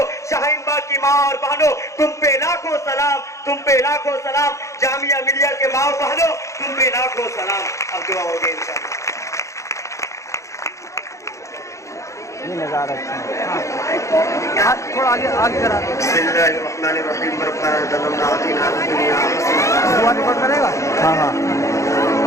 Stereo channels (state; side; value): late; right; 0.15 ms